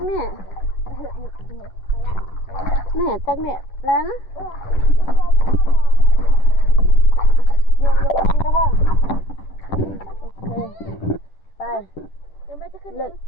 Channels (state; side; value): late; right; 10 ms